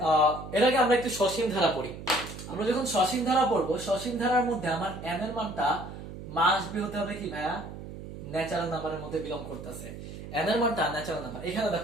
এর আগে আমরা একটু সসীম ধারা পড়ি, আমরা যখন সসীম ধারা পড়বো সসীম ধারার মধ্যে আমার n এর মানটা মাস্ট বি হতে হবে কি ভাইয়া ন্যাচারাল নাম্বারের মধ্যে বিলং করতেছে। n এর মানটা ন্যাচারাল নাম্বার, এখানে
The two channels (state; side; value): noise; right; hum, 11 dB below the sound